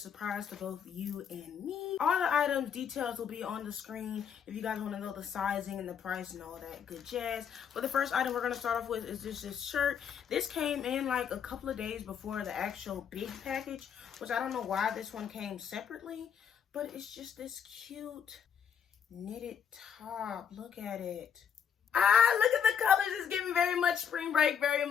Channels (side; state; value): right; quieter; 7.8 dB